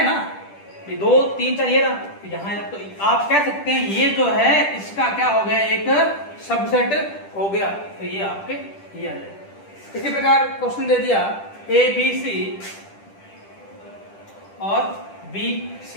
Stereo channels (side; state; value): right; late; 10 ms